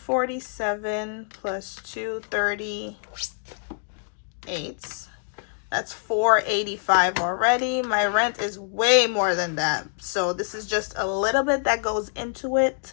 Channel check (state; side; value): silent; right; digital silence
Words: plus 238. That's 485 already. My rent is way more than that. So this is just a little bit that goes into